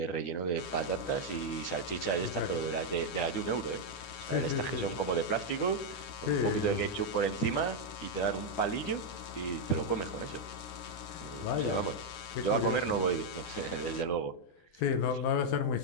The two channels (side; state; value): right; late; 12 ms